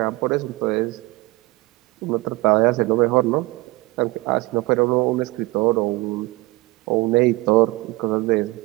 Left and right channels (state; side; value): quieter; left; 22.0 dB